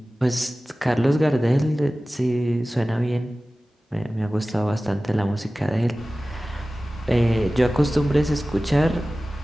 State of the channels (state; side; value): normal; both; correlation 0.97